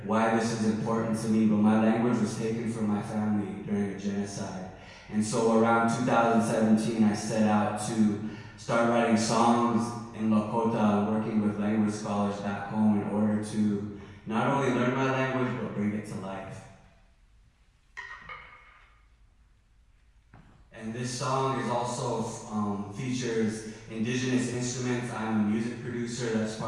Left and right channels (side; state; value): both; identical; correlation 1.00